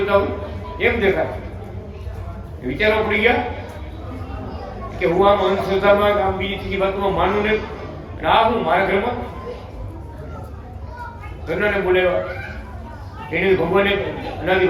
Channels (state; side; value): identical; both; correlation 1.00